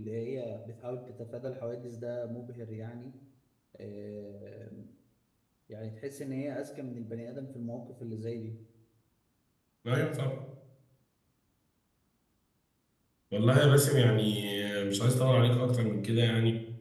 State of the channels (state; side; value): identical; both; correlation 1.00